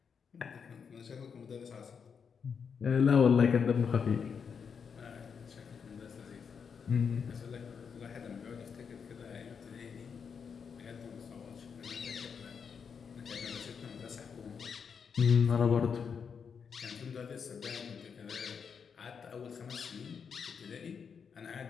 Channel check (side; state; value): right; quieter; 6.4 dB